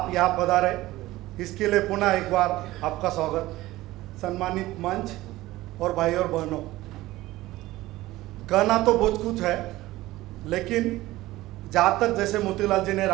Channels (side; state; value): left; quieter; 17.4 dB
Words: यहाँ पधारे, इसके लिए पुनः एक बार आपका स्वागत। सम्मानित मंच और भाई और बहनों, कहना तो बहुत कुछ है, लेकिन जहाँ तक जैसे मोतीलाल जी ने,